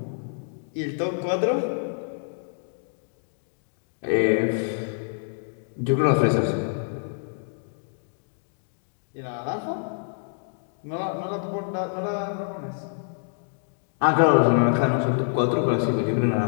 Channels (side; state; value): right; silent; 61 dB below the other